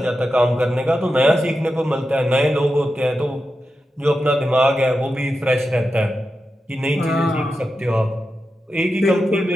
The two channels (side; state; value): both; normal; correlation 0.90